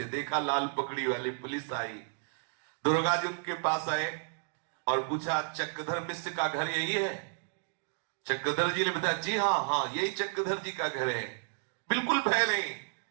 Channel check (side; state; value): left; silent; digital silence